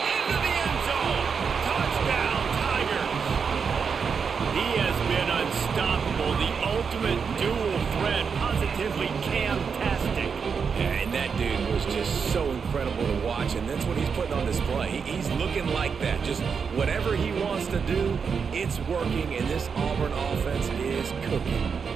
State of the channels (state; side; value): quieter; left; 6.0 dB